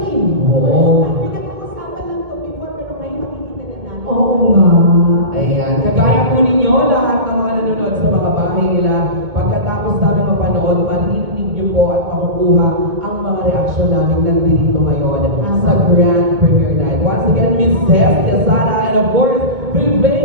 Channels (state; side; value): late; left; 2.2 ms